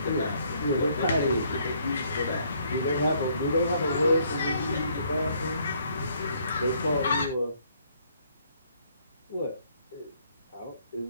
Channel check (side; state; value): both; inverted; correlation -0.66